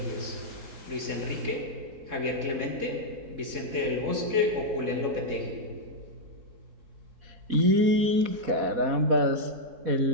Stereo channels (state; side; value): late; left; 4.1 ms